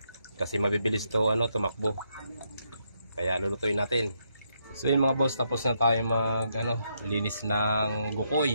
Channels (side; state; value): both; inverted; correlation -0.77